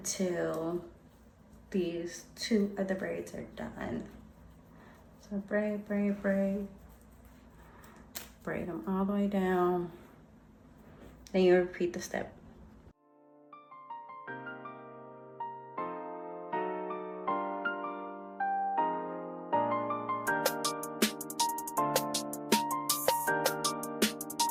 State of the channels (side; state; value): both; identical; correlation 1.00